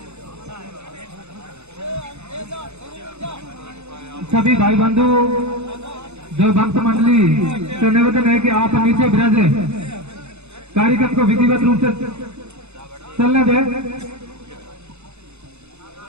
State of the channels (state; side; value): late; left; 0.81 ms